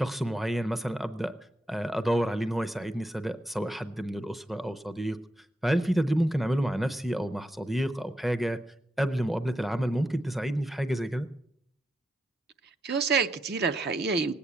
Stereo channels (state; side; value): normal; both; correlation 0.83